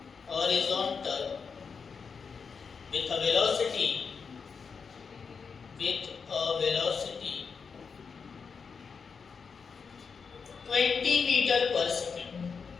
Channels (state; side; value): quieter; right; 5.6 dB